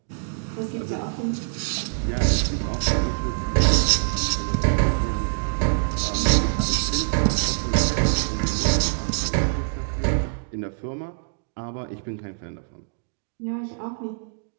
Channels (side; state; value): left; silent; digital silence